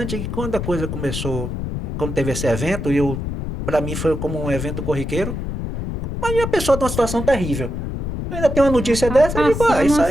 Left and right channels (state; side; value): noise; left; rumble, 4 dB below the sound